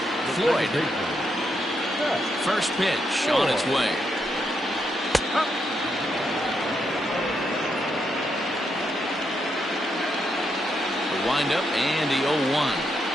Floyd. First pitch on its way. The windup and the 0-1.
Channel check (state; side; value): normal; both; correlation 0.80